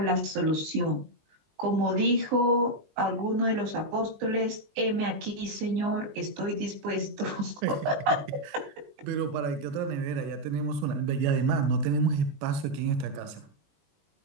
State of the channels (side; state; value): left; late; 20 ms